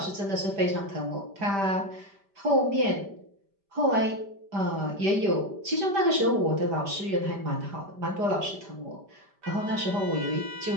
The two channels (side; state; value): left; late; 5.1 ms